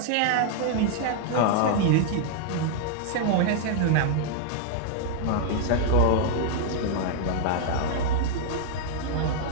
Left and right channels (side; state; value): both; different; correlation -0.01